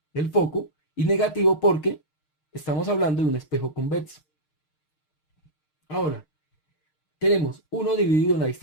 del foco, y negativo porque estamos hablando de un espejo convexo. Ahora, tenemos 1 dividido en la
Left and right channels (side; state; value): right; late; 6.5 ms